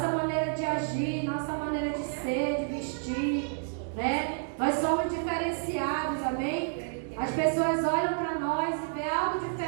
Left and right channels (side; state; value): left; silent; digital silence